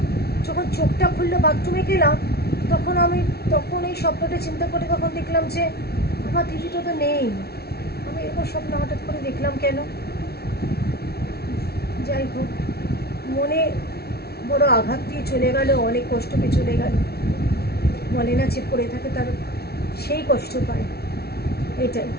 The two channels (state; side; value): late; right; 0.46 ms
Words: যখন চোখটা খুললো বাথরুমে গেলাম, তখন আমি তখন এই স্বপ্নটা চিন্তা করে তখন দেখলাম যে আমার দিদিটা তো নেই। আমি এরকম স্বপ্ন হঠাৎ করে দেখলাম কেন? যাই হোক, মনে বড় আঘাত দিয়ে চলে গেল, অনেক কষ্ট পেয়ে চলে গেল। বলে না যে পড়ে থাকে তার সেই কষ্ট পায়, এটাই।